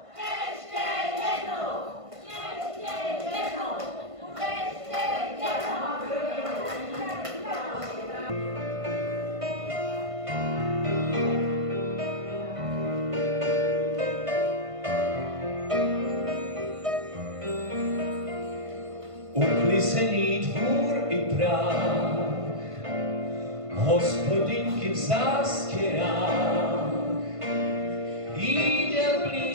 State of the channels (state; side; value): late; left; 1.5 ms